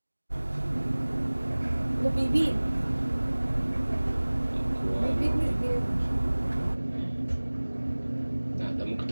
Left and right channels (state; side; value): inverted; both; correlation -1.00